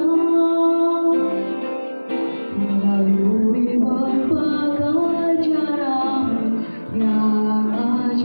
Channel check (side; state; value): both; inverted; correlation -1.00